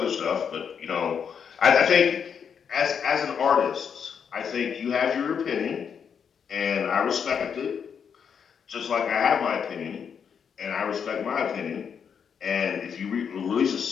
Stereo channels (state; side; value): quieter; right; 7.1 dB